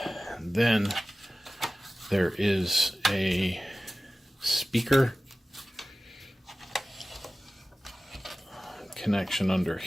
then there is a speaker connection under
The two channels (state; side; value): normal; both; correlation 0.96